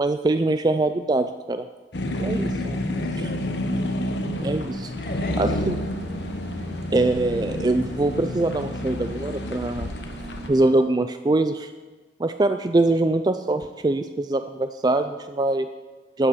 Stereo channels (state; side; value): normal; both; correlation 0.72